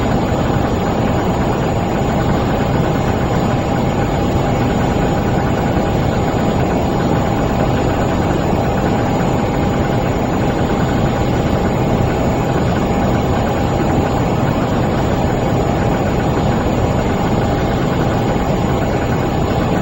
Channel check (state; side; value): identical; both; correlation 1.00